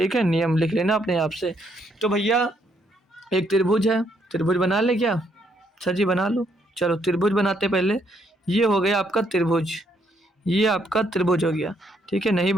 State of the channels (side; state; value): both; normal; correlation 0.73